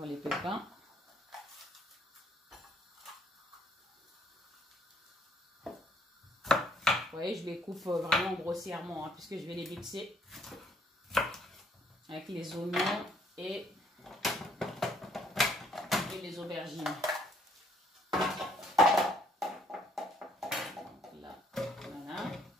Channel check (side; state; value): both; normal; correlation 0.65